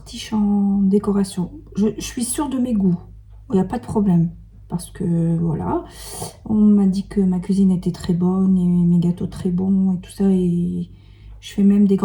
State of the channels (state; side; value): identical; both; correlation 1.00